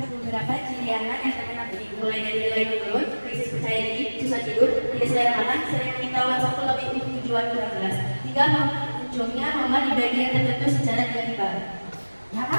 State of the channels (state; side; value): inverted; both; correlation -1.00